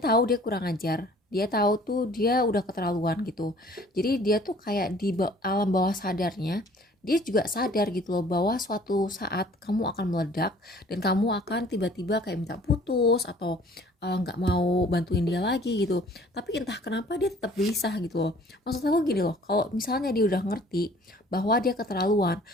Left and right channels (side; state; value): both; normal; correlation 0.53